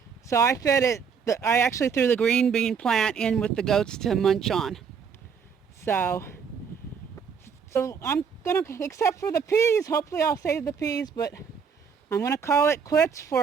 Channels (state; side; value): quieter; left; 6.4 dB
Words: So I fed it, I actually threw the green bean plant in with the goats to munch on. So I'm gonna, except for the peas, hopefully I'll save the peas, but I'm gonna call it quits